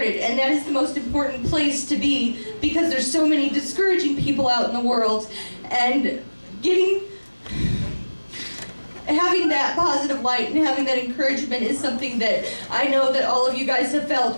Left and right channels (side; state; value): both; inverted; correlation -1.00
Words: and that is the most important place to be, because there's so many discouraging people out in the world, and having that positive light and having that encouragement is something that I know that all of you guys have felt.